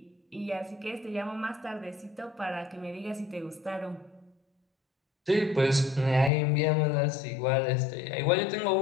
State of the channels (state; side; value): drops out; right; at 6.3 s